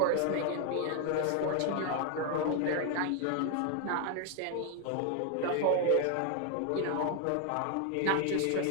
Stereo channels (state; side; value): different; both; correlation 0.01